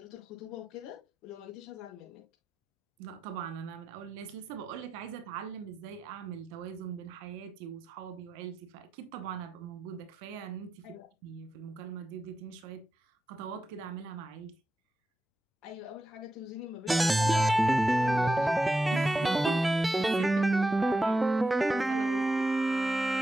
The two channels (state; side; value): normal; both; correlation 0.90